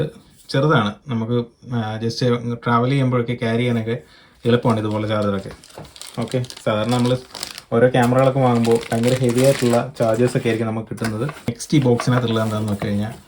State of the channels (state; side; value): identical; both; correlation 1.00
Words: ചെറുതാണ്, നമുക്ക് ജസ്റ്റ് ട്രാവൽ ചെയ്യുമ്പോഴൊക്കെ ക്യാരി ചെയ്യാനൊക്കെ എളുപ്പമാണ് ഇതുപോലെ ചാർജറൊക്കെ. ഓക്കെ, സാധാരണ നമ്മൾ ഓരോ ക്യാമറകളൊക്കെ വാങ്ങുമ്പോൾ ഭയങ്കര ഹെവി ആയിട്ടുള്ള ചാർജേഴ്സൊക്കെ ആയിരിക്കും നമുക്ക് കിട്ടുന്നത്. നെക്സ്റ്റ് ഈ ബോക്സിനകത്തുള്ളത് എന്താണെന്ന് നോക്കി കഴിഞ്ഞാൽ